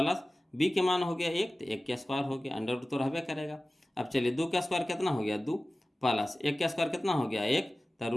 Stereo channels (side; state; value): both; normal; correlation 0.97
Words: b के मान हो गया 1, तो 1 के स्क्वायर हो गया, अंडर रूट तो रहबे करेगा। अब चलिए 2 का स्क्वायर कितना हो गया? 2, प्लस 1 का स्क्वायर कितना हो गया? 1, तो